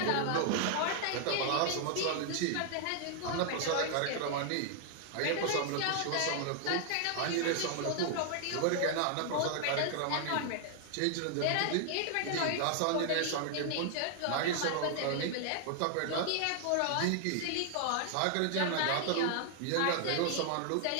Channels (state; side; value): different; both; correlation 0.00